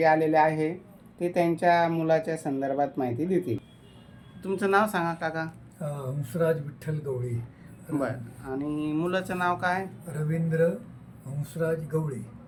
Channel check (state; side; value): identical; both; correlation 1.00